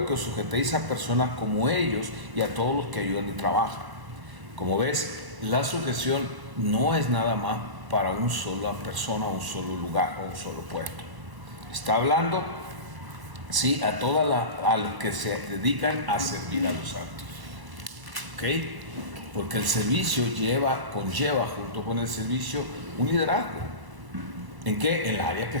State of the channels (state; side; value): late; left; 1.0 ms